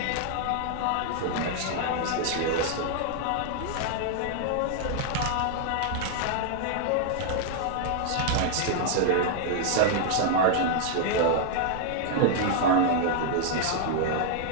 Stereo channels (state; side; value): different; both; correlation -0.01